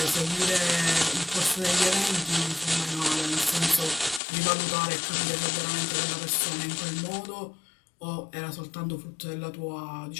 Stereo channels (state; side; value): drops out; right; at 4.2 s